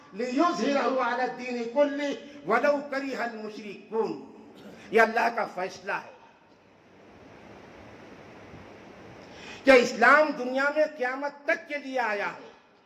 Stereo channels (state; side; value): identical; both; correlation 1.00